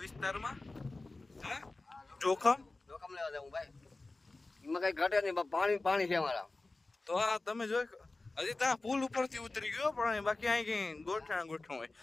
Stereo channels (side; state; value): right; quieter; 3.2 dB